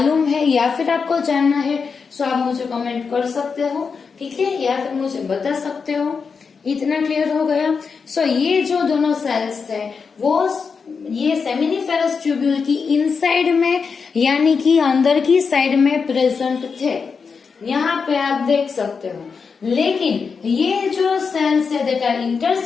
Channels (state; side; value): quieter; right; 5.4 dB